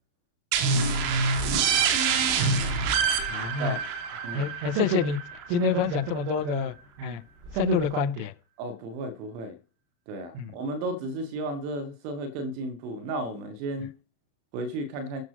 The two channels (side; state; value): left; late; 35 ms